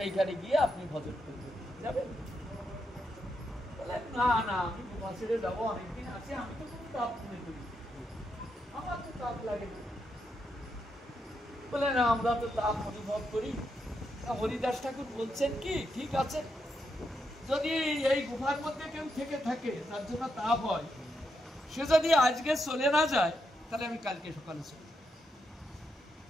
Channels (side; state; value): both; normal; correlation 0.82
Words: গিয়ে আপনি ভজন করবেন, যাবেন? না না, আমি গুফা ছেড়ে যাবো, অনেকদিন আছে, আমি তো কোনো তাপ মনে করি, আমার তো তাপ লাগে না। বলে না, আমরা তো তাপ অনুভব করি। হরিদাস ঠাকুর বলছেন কি, ঠিক আছে, যদি এই গুফার মধ্যে কেউ থেকে থাকে তার জন্য তাপ হয়, সে যদি আজকে চলে না যায় তাহলে আমি কালকে সকালে চলে যাব।